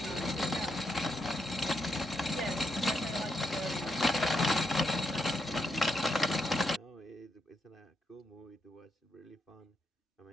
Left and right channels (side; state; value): both; normal; correlation 0.80